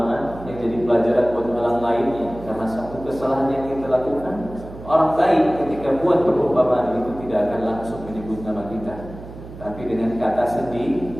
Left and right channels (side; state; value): right; noise; hum, 15 dB below the sound